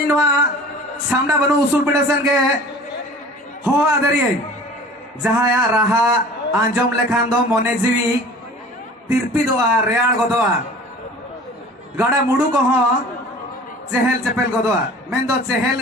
सामना बनो उसूल पिटेशन के हो आदरिये जहाँ या रहा आंजम लेखान दो मोने जीवी तिरपी दोआ रेयाड़ गोदोआ गाड़ा मुड़ू को हो चेहल चेपेल गोदोआ मैं दो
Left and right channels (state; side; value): normal; both; correlation 0.44